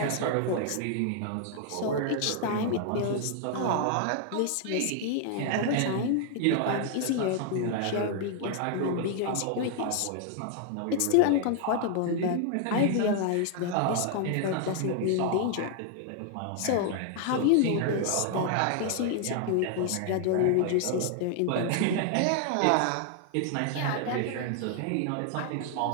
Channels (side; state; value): both; different; correlation 0.00